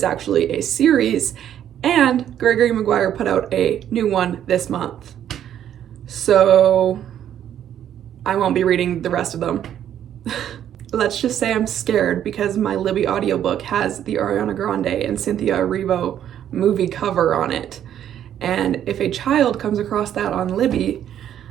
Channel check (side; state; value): left; quieter; 10.4 dB